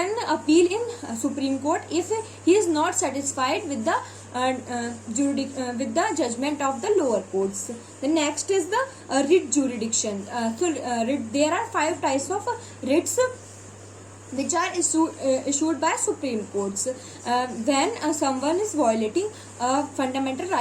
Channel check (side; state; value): both; identical; correlation 1.00